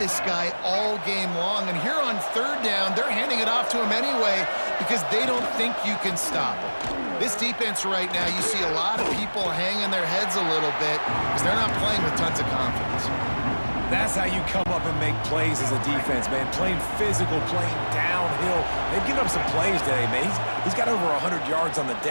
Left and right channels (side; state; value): both; inverted; correlation -1.00